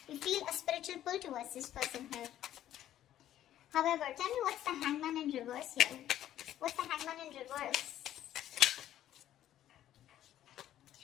feel a spiritual pull towards this person here. However, tell me what's the Hangman in reverse here? What's the Hangman in reverse?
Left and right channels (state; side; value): quieter; right; 12.2 dB